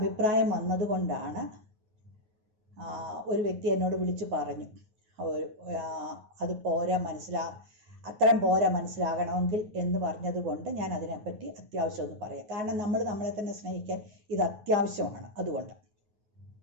വന്നതുകൊണ്ടാണ് ഒരു വ്യക്തി എന്നോട് വിളിച്ചു പറഞ്ഞു, അത് പോരാ, അത്രയും പോരാ മനസ്സിലാകണമെങ്കിൽ എന്ന് പറഞ്ഞതുകൊണ്ട് ഞാൻ അതിനെപ്പറ്റി അത്യാവശ്യം ഒന്ന് പറയാം. കാരണം നമ്മൾ നമ്മളെ തന്നെ സ്നേഹിക്കാൻ ഇത് അത്യാവശ്യമാണ്. അതുകൊണ്ട്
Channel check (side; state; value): left; late; 9.4 ms